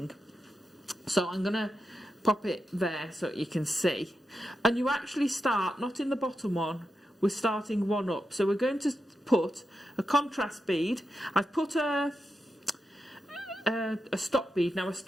So I'm going to pop it there so you can see. And you actually start, not in the bottom one, we're starting one up. So we're going to put a contrast bead. I've put a stop bead. Now a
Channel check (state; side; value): normal; both; correlation 0.88